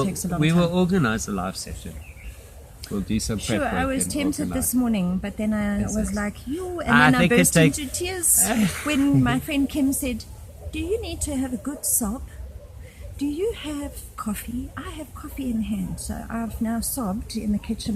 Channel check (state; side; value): identical; both; correlation 1.00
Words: takes a long we time? will organize a live session. We'll do some prep Sure, work I was and tempted organize. this morning, but then I Yes, was yes. like, you, and I then I think it burst takes- into tears when my friend Kim said, do you need to have a good sob? Do you have coffee? I have coffee in hand, so I've now sobbed in the